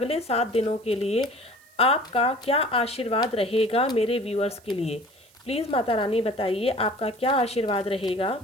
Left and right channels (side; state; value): right; noise; hiss, 29 dB below the sound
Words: 7 दिनों के लिए आपका क्या आशीर्वाद रहेगा मेरे व्यूअर्स के लिए। प्लीज़ माता रानी बताइए आपका क्या आशीर्वाद रहेगा।